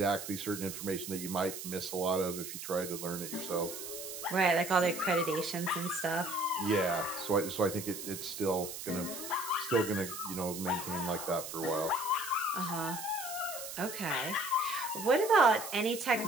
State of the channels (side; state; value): right; noise; hiss, 8 dB below the sound